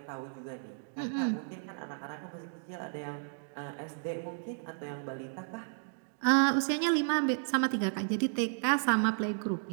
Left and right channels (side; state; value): left; silent; digital silence